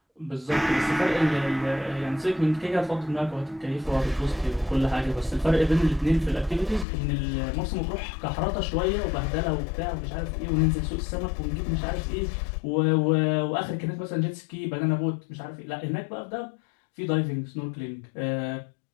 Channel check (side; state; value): right; drops out; at 6.9 s